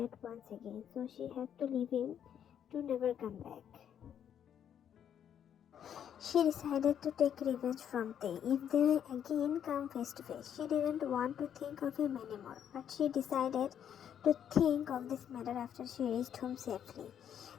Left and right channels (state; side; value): quieter; right; 9.2 dB